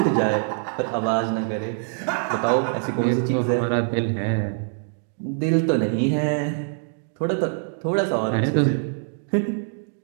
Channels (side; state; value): left; silent; digital silence